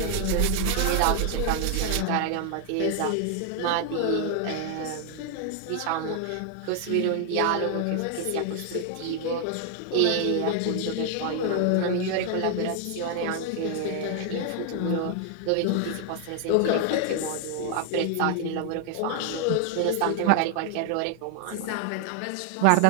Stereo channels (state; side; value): different; both; correlation 0.00